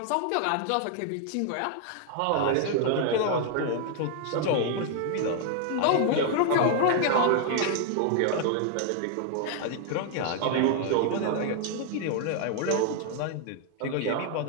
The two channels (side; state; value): both; different; correlation 0.00